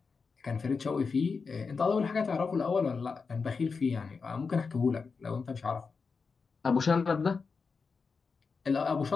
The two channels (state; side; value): quieter; right; 5.0 dB